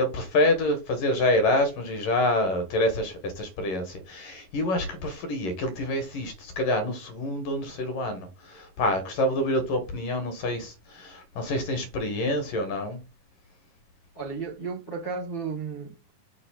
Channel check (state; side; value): late; right; 11 ms